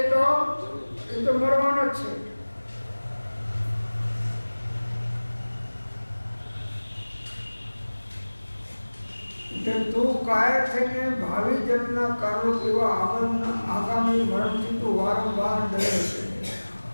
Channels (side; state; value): both; inverted; correlation -1.00